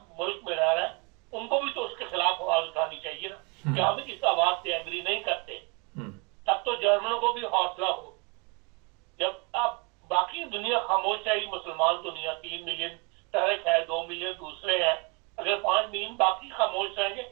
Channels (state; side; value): quieter; left; 31.5 dB